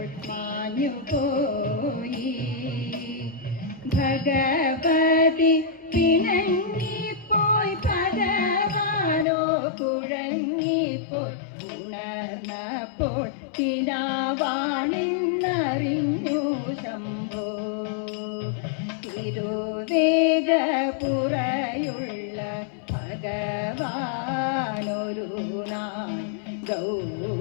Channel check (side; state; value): right; drops out; at 9.2 s